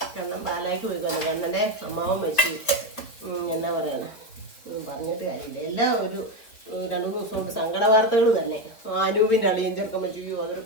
കണ്ണൻ പാലായിക്ക് പോയിക്കൊന്നു. കണ്ണൻ്റെ അമ്മാവൻ മരിച്ചു. എന്നാ പറയണ പറഞ്ഞിട്ട് കാര്യമില്ല. എല്ലാം ഒരു 2-3 ദിവസം കൊണ്ട് സങ്കട വാർത്തകൾ തന്നെ. അനൂപിൻ്റെ അളിയൻ ചെറുക്കം വെച്ചു.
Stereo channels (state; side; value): late; right; 4.6 ms